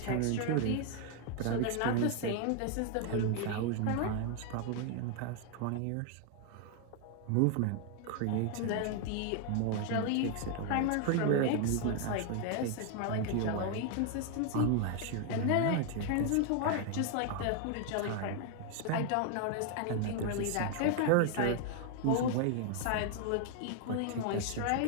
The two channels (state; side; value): different; both; correlation 0.00